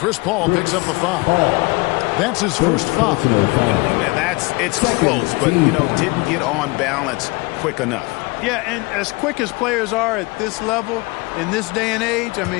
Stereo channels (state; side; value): quieter; right; 25.6 dB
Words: Paul picks up the foul. That's his first foul. Man, it's close, but, didn't get on balance quick enough. Yeah, and as quick as players are at this level, in this day and age, I